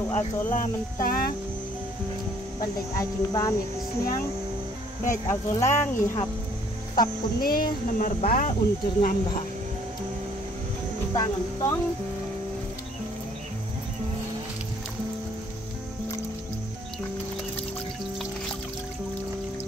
azola mentah bandek ajing bam ya kesniang baik azola ngihap tap kuni nomor ba unjur ngambah tangan tong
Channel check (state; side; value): normal; both; correlation 0.61